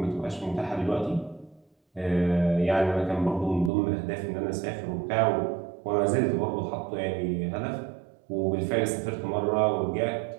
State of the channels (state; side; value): drops out; left; at 3.7 s